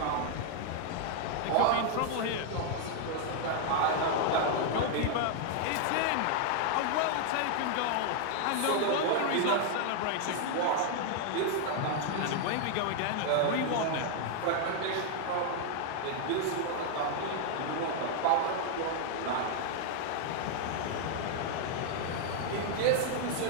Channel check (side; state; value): both; different; correlation 0.00